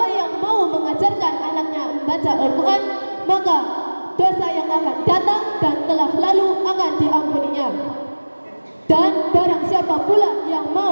yang mau mengajarkan anaknya membaca Al-Quran, maka dosa yang akan datang dan telah lalu akan diampuninya. Dan barang siapa pula yang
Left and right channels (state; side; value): inverted; both; correlation -1.00